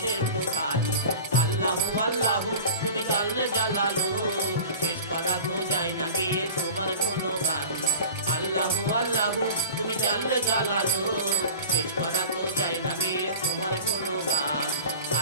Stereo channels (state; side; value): inverted; both; correlation -0.37